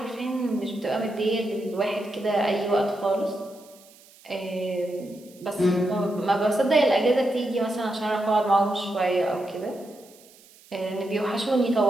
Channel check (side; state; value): right; noise; hiss, 25 dB below the sound